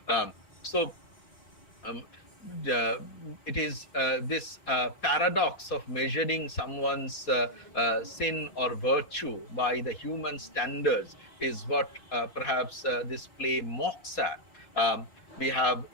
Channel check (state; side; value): late; right; 4.2 ms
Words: So um, it is this paradox of measuring someone's sin or virtue by the human standards is what perhaps this play mocks at. We have